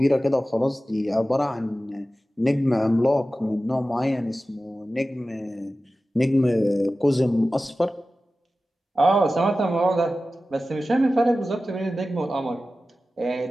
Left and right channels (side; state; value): both; normal; correlation 0.95